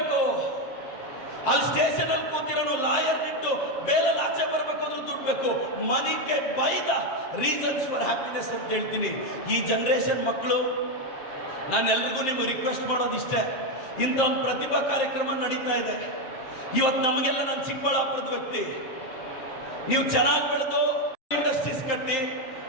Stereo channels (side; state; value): right; late; 7.6 ms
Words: ಅಲ್ಲಿ ಸ್ಟೇಷನ್ ಅಲ್ಲಿ ಕೂತಿರೋನು ಲಾಯರ್ ಇಟ್ಟು ಬೇಲಲ್ಲಿ ಆಚೆ ಬರಬೇಕು ಅಂದ್ರೆ ದುಡ್ಡು ಬೇಕು. Money can buy the reasons for happiness ಅಂತ ಹೇಳ್ತೀನಿ. ಈ ಜನರೇಷನ್ ಮಕ್ಕಳು, ನಾನು ಎಲ್ರಿಗೂ ನಿಮ್ಗೆ ರಿಕ್ವೆಸ್ಟ್ ಮಾಡೋದಿಷ್ಟೇ, ಇಂಥ ಒಂದು ಪ್ರತಿಭಾ ಕಾರ್ಯಕ್ರಮ ನಡೀತಾ ಇದೆ ಇವತ್ತು. ನಮಗೆಲ್ಲ ನಾನು ಚಿಕ್ಕಬಳ್ಳಾಪುರದ ವ್ಯಕ್ತಿ, ನೀವು ಚೆನ್ನಾಗಿ ಬೆಳೆದು ಇಂಡಸ್ಟ್ರೀಸ್ ಕಟ್ಟಿ